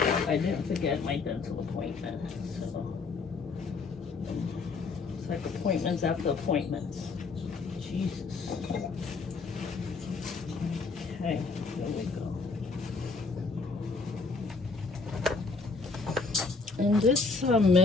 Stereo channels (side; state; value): right; quieter; 4.3 dB